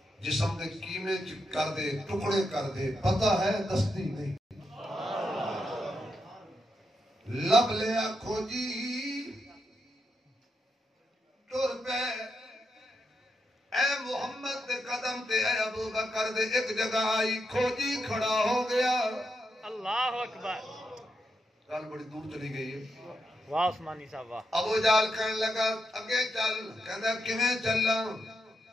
جسم دے کیمے کر دے ٹکڑے کر دے پتہ ہے دستی نہیں لب لیا کھوجی ٹر پہ اے محمد دے قدم تے اے ابو بکر دے ایک جگہ آئی کھوجی کھڑا ہو گیا اللہ اکبر گل بڑی دور چلی گئی ہے واہ عثمانی صاحب واہ ابو جہل کہنے لگا اگے چل کہندا کیویں چلاں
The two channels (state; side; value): normal; both; correlation 0.84